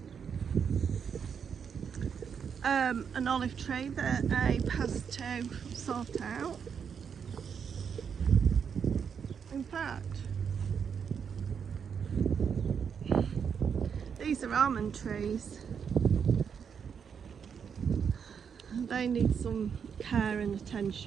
an olive tree that Abe has to sort out. In fact, these are almond trees. They need some care and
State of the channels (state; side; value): quieter; left; 7.0 dB